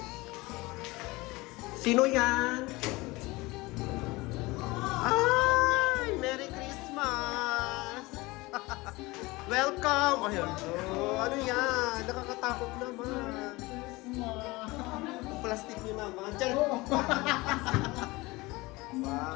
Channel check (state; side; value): quieter; right; 22.1 dB